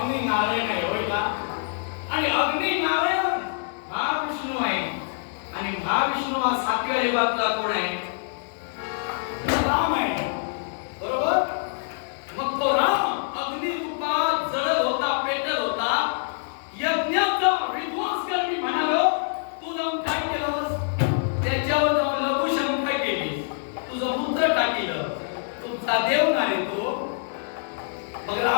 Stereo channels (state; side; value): silent; right; digital silence